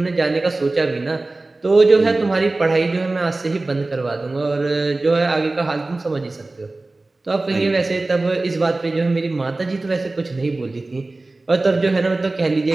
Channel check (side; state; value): left; quieter; 3.1 dB